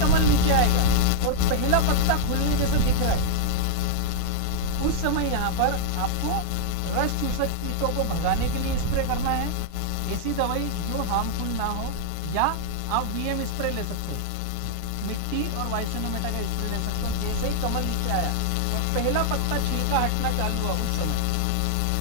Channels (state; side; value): different; both; correlation 0.00